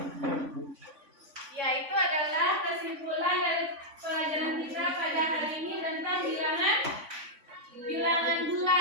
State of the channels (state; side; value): late; left; 3.5 ms